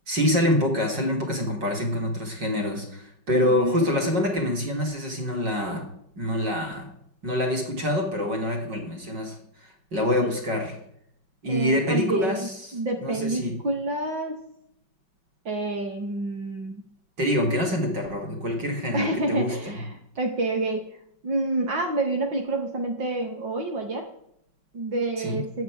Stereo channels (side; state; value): left; late; 5.4 ms